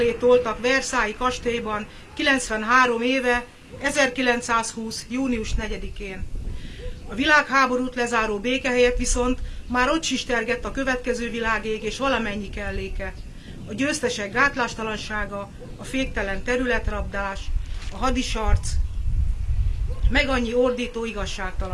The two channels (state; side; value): identical; both; correlation 1.00